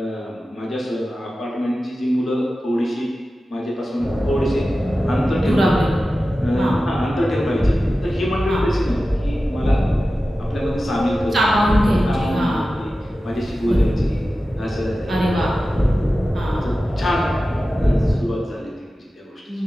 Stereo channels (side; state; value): both; normal; correlation 0.94